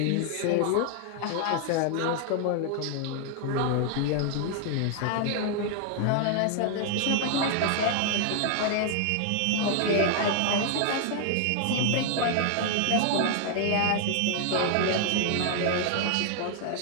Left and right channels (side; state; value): both; different; correlation 0.00